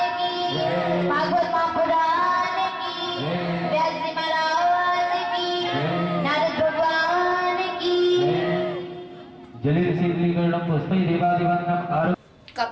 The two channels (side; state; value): both; identical; correlation 1.00